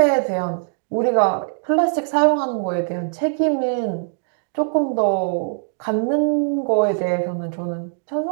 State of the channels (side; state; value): left; silent; digital silence